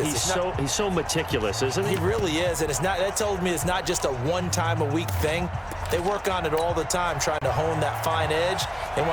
He's so meticulous, isn't he? He really is, and that told me it's not just a one-time-a-week thing. They work on it all the time, trying to hone that fine edge. They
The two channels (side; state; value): both; identical; correlation 1.00